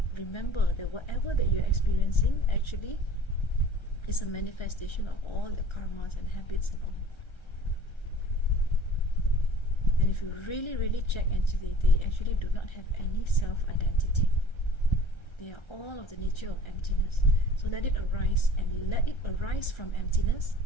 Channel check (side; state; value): right; late; 1.3 ms